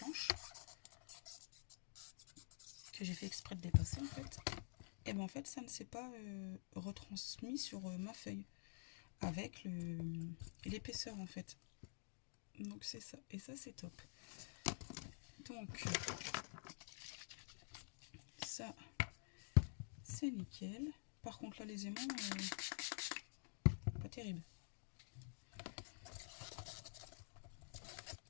que j'ai fait exprès de dépasser en fait. Et bien en fait, ça ne s'est pas retransmis sur ma feuille avec l'épaisseur en fait. Donc c'est ça. Et ça, c'est top. Donc ça, c'est nickel. Par contre là, les aimants, pas terrible.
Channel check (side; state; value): right; silent; digital silence